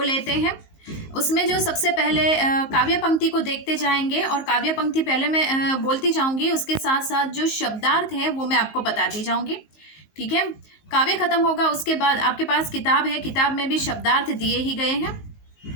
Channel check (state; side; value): late; right; 19 ms